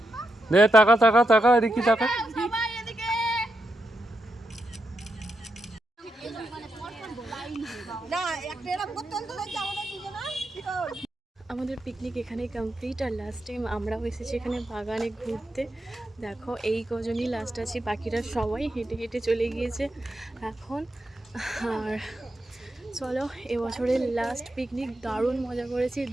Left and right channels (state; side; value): normal; both; correlation 0.85